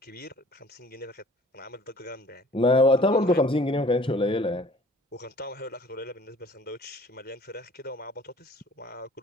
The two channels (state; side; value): normal; both; correlation 0.52